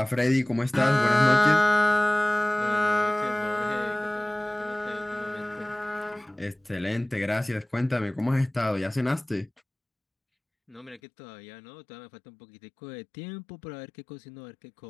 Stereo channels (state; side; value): drops out; right; at 11.0 s